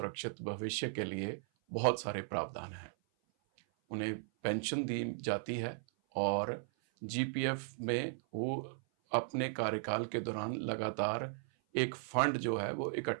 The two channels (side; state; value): left; silent; 53 dB below the other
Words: भविष्य के लिए बहुत सारे प्रावधान हैं। उन्हें पेंशन दी जाती है और जीपीएफ में वो अपने कार्यकाल के दौरान लगातार एक फंड जो है वो